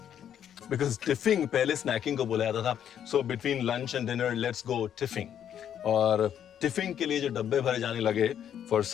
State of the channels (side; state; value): right; quieter; 9.5 dB